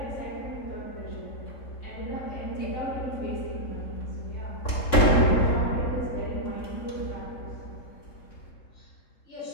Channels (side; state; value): right; late; 3.5 ms